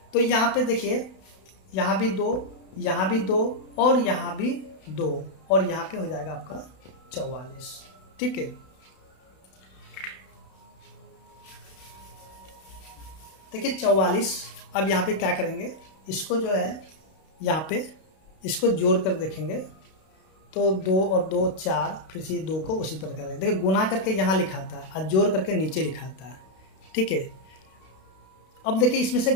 तो यहाँ पे देखिए यहाँ भी 2, यहाँ भी 2 और यहाँ भी 2 और यहाँ पे हो जाएगा आपका 44, ठीक है। देखिए 44। अब यहाँ पे क्या करेंगे, इसको जो है यहाँ पे इसको जोड़ कर देखेंगे तो 2 और 2 4, फिर से 2 को उसी प्रकार करेंगे। देखिए गुना करके यहाँ लिखा था और जोड़ करके नीचे लिखा था, ठीक है। अब देखिए इसमें से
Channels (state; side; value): late; right; 32 ms